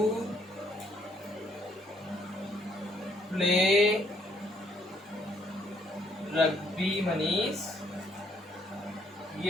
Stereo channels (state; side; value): normal; both; correlation 0.68